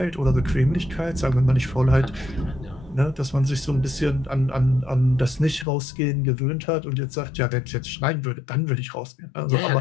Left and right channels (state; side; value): drops out; right; at 5.7 s